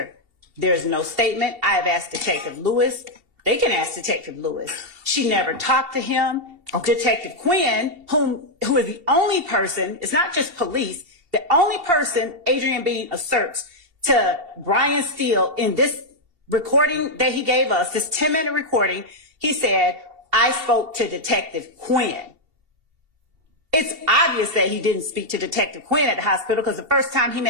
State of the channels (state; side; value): late; left; 2.7 ms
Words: there's no statement. I have asked Detective Lewis. They can ask Detective Lewis. She never talked to him. Okay. Detective Quinn, who is the only person, it's not just police, the only person Adrian Bean asserts to Brian Steele in this recording that he gave us, this 10-minute recording, he said, I spoke to Detective Quinn. It's obvious that he didn't speak to Detective Quinn at the hospital, because the first time he